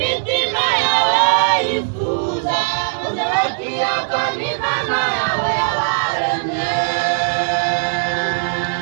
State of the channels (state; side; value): silent; left; 59 dB below the other